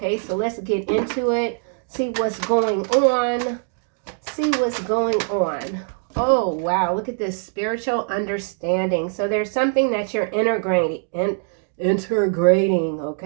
so let's get into it. See what's going on. See what's going on. Oh, wow. Look at this spiritual understanding. So there's something that you're integrating,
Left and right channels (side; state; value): left; silent; digital silence